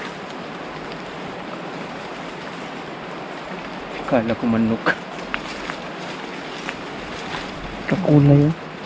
Kala ko manok. Kakulay oh.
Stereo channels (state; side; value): identical; both; correlation 1.00